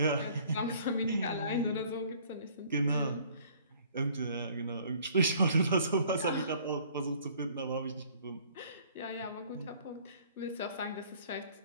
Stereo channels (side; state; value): both; inverted; correlation -0.56